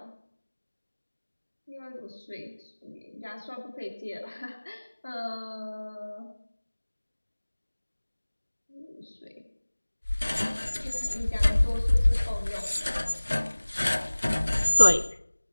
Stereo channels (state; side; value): inverted; both; correlation -1.00